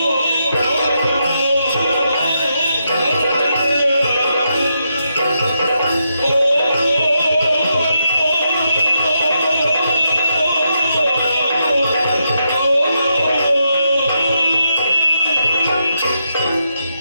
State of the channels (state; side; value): inverted; both; correlation -0.82